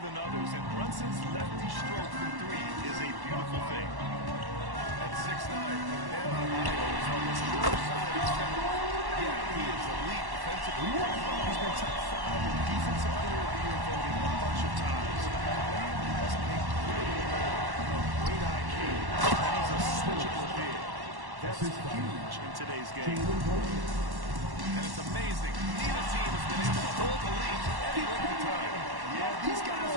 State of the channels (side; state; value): left; late; 1.1 ms